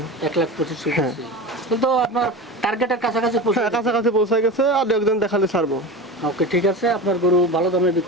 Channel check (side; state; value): both; normal; correlation 0.28